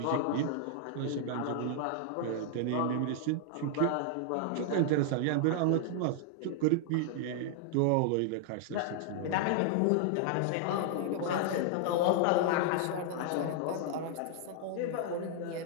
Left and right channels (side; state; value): both; different; correlation 0.00